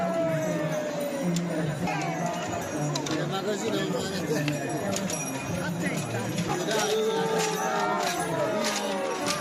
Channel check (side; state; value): both; identical; correlation 1.00